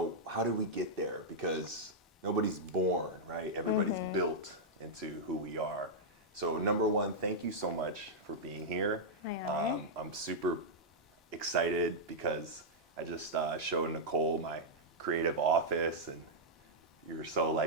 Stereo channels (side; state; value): both; normal; correlation -0.06